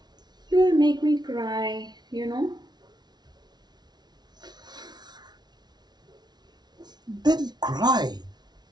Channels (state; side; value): late; left; 0.20 ms